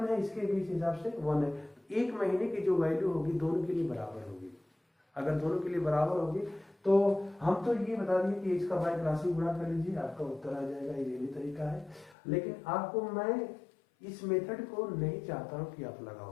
है, इसके भी हिसाब से 1 है। तो 1 महीने की जो वैल्यू होगी दोनों के लिए बराबर होगी। अगर दोनों के लिए बराबर होगी तो हम तो ये बता दिए कि इसका बाई राशि गुणा कर लीजिए, आपका उत्तर आ जाएगा। ये भी तरीका है, लेकिन आपको मैं इस मेथड को नहीं चाहता हूं कि आप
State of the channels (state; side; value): drops out; right; at 12.2 s